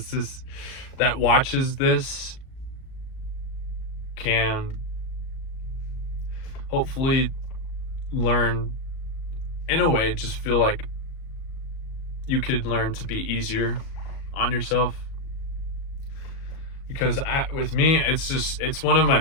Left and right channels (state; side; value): late; right; 37 ms